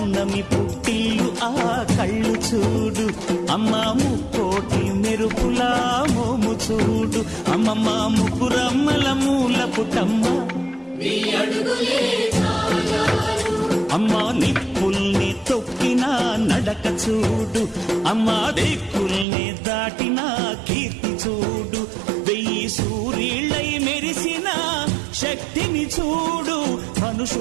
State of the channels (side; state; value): left; drops out; at 19.2 s